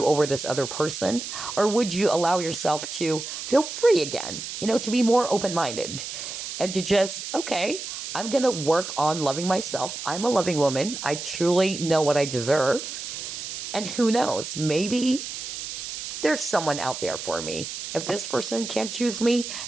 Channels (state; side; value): noise; right; hiss, 7 dB below the sound